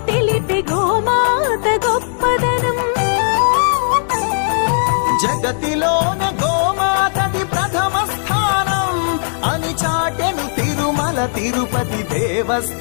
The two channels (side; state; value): right; silent; 60 dB below the other